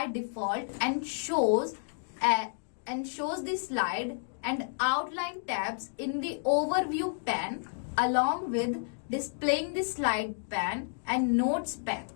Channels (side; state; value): right; silent; digital silence